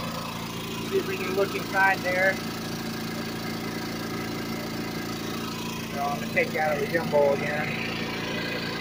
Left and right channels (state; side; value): identical; both; correlation 1.00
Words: See if we can look inside there. So I'm going to take you out of the gimbal again.